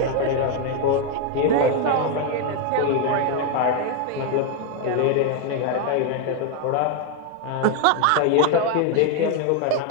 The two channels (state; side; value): different; both; correlation 0.01